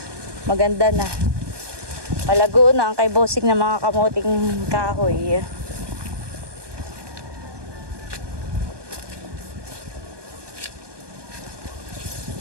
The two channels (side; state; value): left; late; 1.2 ms